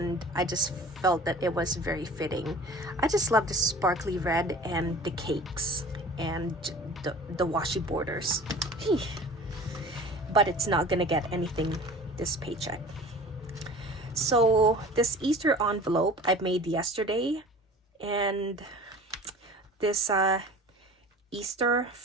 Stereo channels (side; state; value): both; normal; correlation 0.42